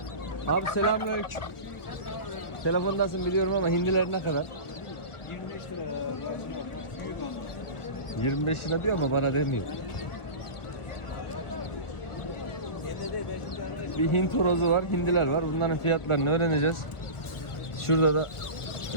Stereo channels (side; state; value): right; late; 1.2 ms